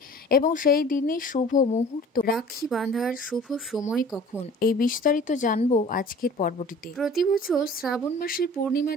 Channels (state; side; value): normal; both; correlation 0.45